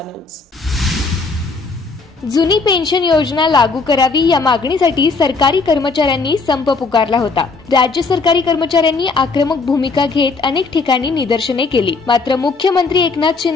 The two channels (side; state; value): right; quieter; 4.2 dB